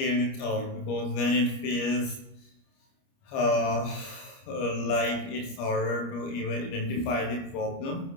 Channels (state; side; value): late; right; 29 ms